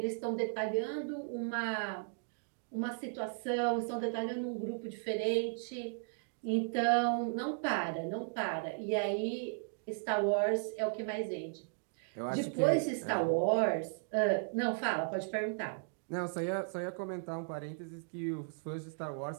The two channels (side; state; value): left; silent; digital silence